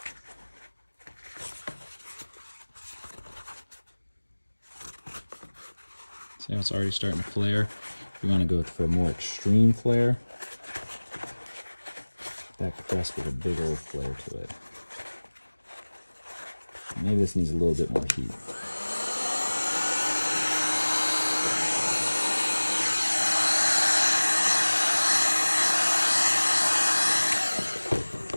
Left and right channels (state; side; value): inverted; both; correlation -1.00